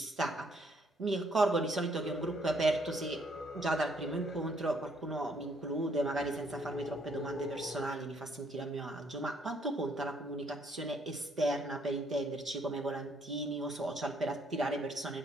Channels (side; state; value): both; normal; correlation 0.68